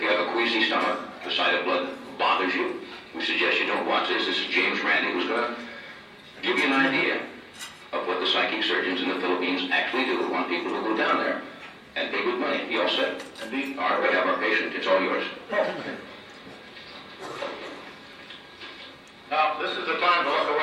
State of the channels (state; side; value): identical; both; correlation 1.00